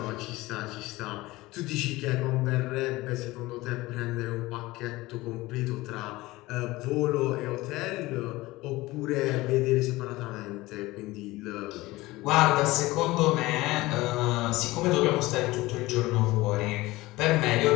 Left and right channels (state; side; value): quieter; right; 19.6 dB